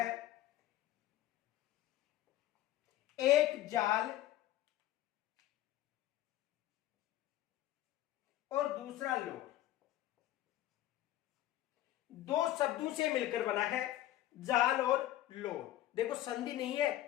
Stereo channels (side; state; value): right; quieter; 14.2 dB